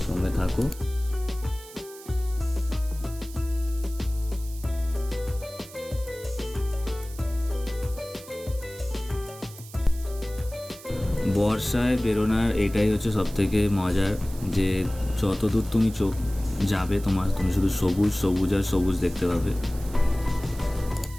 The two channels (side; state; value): right; noise; hiss, 18 dB below the sound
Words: সঙ্গে থাকো। বর্ষায় বেরোনোর এটাই হচ্ছে সবথেকে মজার, যে যত দূর তুমি চোখ যাবে তুমি শুধু সবুজ সবুজ আর সবুজ দেখতে পাবে।